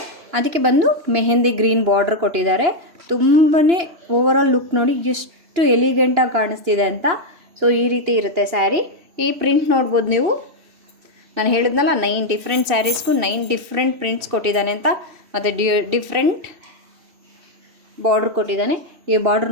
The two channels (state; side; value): late; left; 3.1 ms